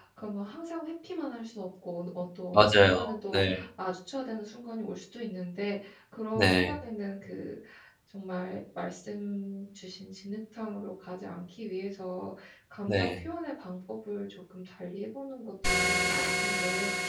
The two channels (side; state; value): both; identical; correlation 1.00